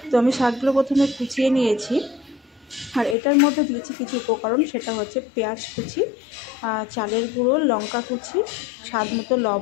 তো আমি শাকগুলো প্রথমে কুচিয়ে নিয়েছি, আর এটার মধ্যে দিয়েছি কিছু উপকরণ, সেটা হচ্ছে পেঁয়াজ কুচি, চালের গুঁড়ো, লঙ্কা কুচি, স্বাদ মতো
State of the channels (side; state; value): right; drops out; at 3.2 s